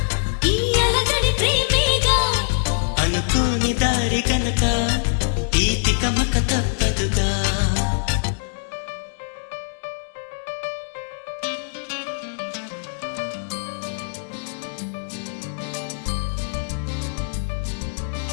ఈ అలజడి ప్రేమేగా, అనుకోని దారి గనక ఈ తికమక తప్పదుగా.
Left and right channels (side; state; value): right; silent; digital silence